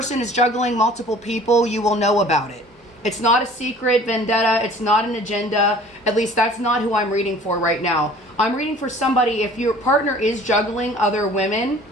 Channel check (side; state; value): both; normal; correlation 0.49